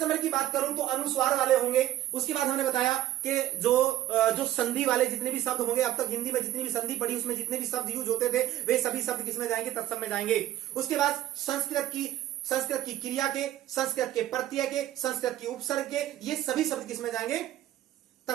नंबर की बात करूं तो अनुस्वार वाले होंगे। उसके बाद हमने बताया कि जो संधि वाले जितने भी शब्द होंगे, अब तक हिंदी में जितनी भी संधि पढ़ी उसमें जितने भी शब्द यूज होते थे वे सभी शब्द किसमें जाएंगे, तत्सम में जाएंगे। उसके बाद संस्कृत की क्रिया के, संस्कृत के प्रत्यय के, संस्कृत की उपसर्ग के, ये सभी शब्द किसमें जाएंगे,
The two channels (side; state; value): left; quieter; 13.5 dB